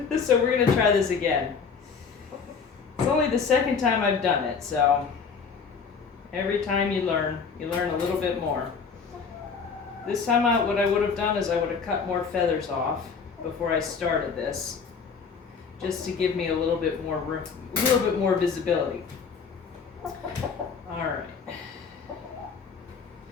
So we're gonna try this again. It's only the second time I've done it, so every time you learn a little bit more. This time what I would have done is I would have cut more feathers off before I started this, just to give me a little bit more visibility. All right.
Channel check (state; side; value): quieter; right; 5.7 dB